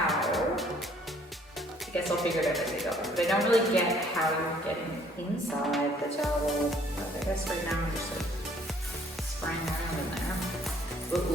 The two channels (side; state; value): both; normal; correlation 0.61